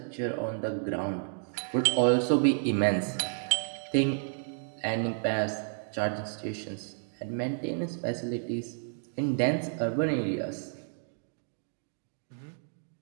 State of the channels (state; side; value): silent; left; digital silence